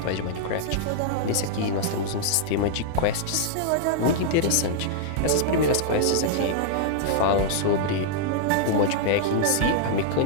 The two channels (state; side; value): different; both; correlation -0.01